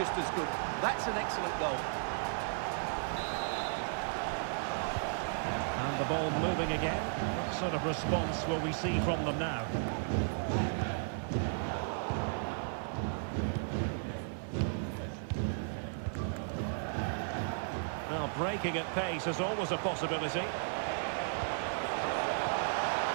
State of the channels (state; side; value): silent; left; 55 dB below the other